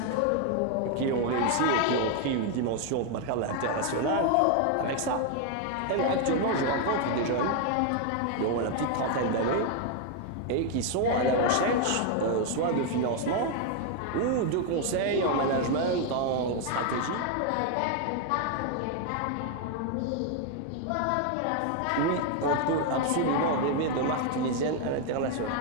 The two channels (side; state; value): both; different; correlation 0.00